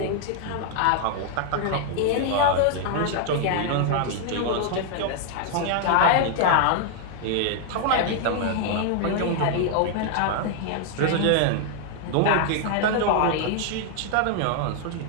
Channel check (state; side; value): different; both; correlation 0.00